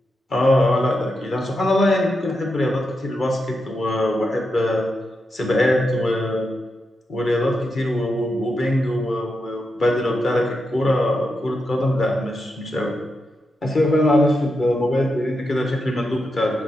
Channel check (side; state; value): both; normal; correlation 0.86